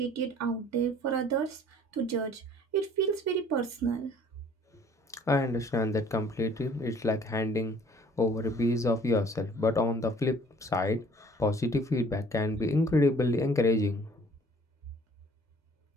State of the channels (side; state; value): both; normal; correlation 0.54